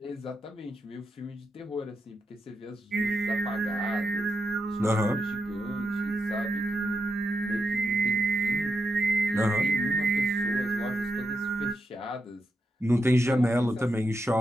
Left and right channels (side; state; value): both; normal; correlation 0.86